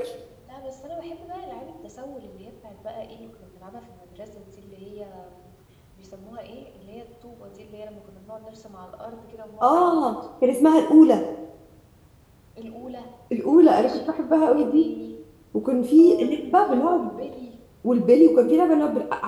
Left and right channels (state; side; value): identical; both; correlation 1.00